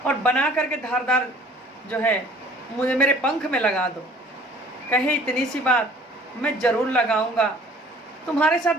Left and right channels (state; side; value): normal; both; correlation 0.52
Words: और बना करके धारदार जो है मुझे मेरे पंख में लगा दो। कहे इतनी सी बात, मैं ज़रूर लगाऊंगा, तुम्हारे साथ